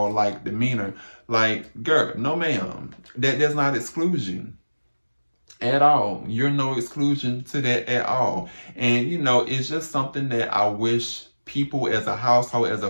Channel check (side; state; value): both; inverted; correlation -1.00